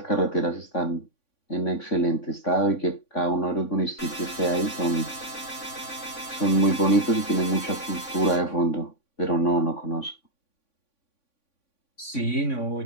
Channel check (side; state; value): right; late; 3.5 ms